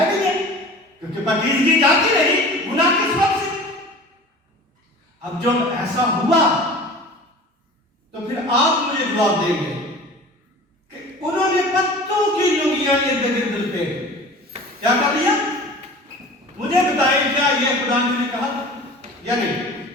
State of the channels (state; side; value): normal; both; correlation 0.40